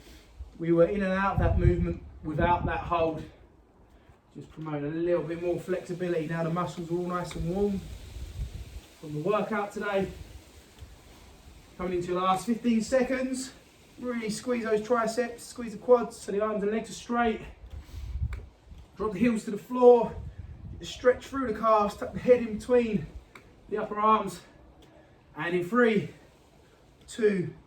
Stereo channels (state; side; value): identical; both; correlation 1.00